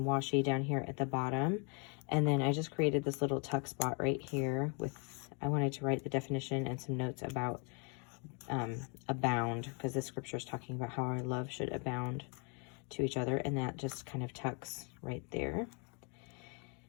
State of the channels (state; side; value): quieter; right; 36.0 dB